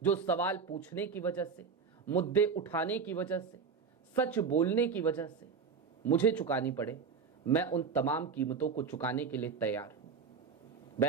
जो सवाल पूछने की वजह से, मुद्दे उठाने की वजह से, सच बोलने की वजह से मुझे चुकानी पड़े, मैं उन तमाम कीमतों को चुकाने के लिए तैयार हूं।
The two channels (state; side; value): quieter; left; 5.7 dB